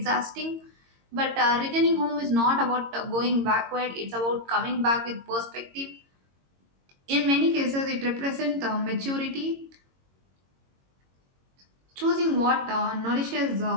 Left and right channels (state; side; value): late; left; 22 ms